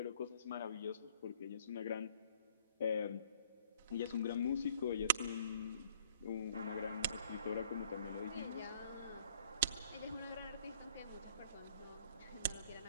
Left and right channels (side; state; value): both; inverted; correlation -0.59